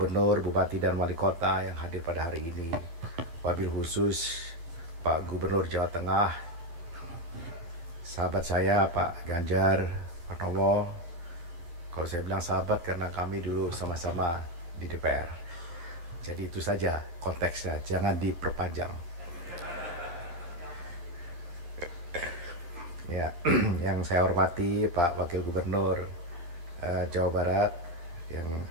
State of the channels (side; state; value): left; late; 12 ms